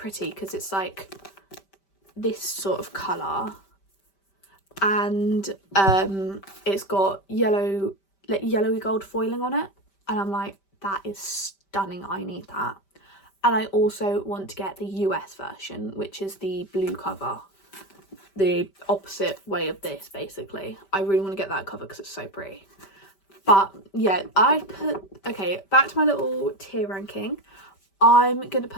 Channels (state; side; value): late; right; 5.1 ms